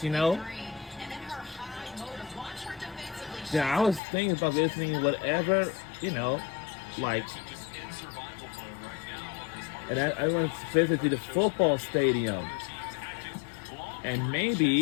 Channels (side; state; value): right; drops out; at 4.0 s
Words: you know, then I was thinking about visiting whatever, you know, like, Just in survival mode right now. and I went to visit the football stadium, and